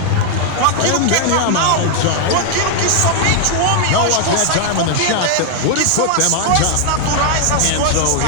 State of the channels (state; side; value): different; both; correlation 0.00